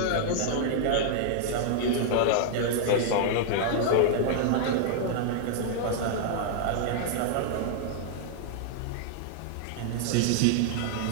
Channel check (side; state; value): both; different; correlation -0.01